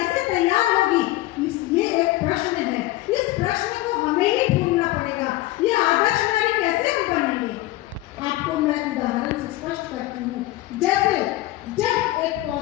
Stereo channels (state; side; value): quieter; right; 17.2 dB